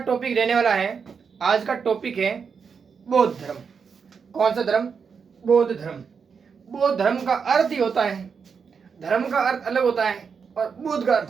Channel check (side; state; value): left; quieter; 6.0 dB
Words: रहने वाला है, आज का टॉपिक है बौद्ध धर्म। कौन सा धर्म? बौद्ध धर्म। बौद्ध धर्म का अर्थ ही होता है, धर्म का अर्थ अलग होता है और बुद्ध का